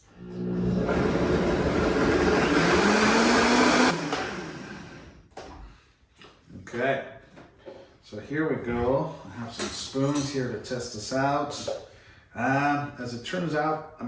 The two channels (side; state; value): both; identical; correlation 1.00